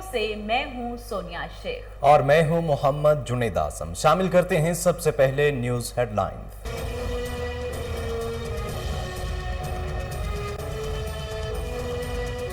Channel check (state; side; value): identical; both; correlation 1.00